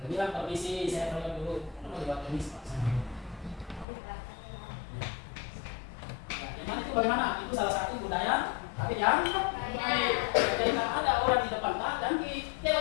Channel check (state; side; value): drops out; right; at 3.9 s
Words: Bilang permisi, saya tolong dulu. Mau dibuat permisi, Pak. Yang mana itu bagaimana? Itu salah satu budaya, tapi yang baik. Jadi kalau ada orang di depan, dan